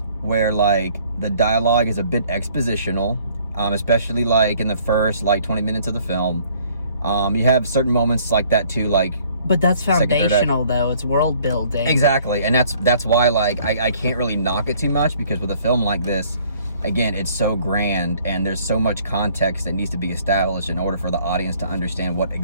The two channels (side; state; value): both; inverted; correlation -0.59